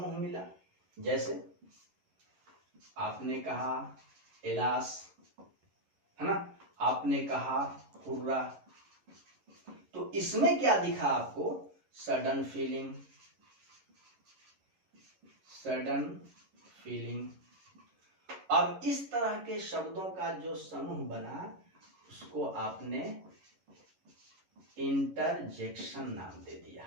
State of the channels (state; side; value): late; left; 11 ms